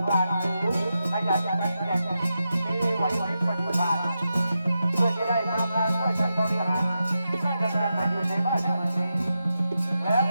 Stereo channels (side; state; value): both; inverted; correlation -0.88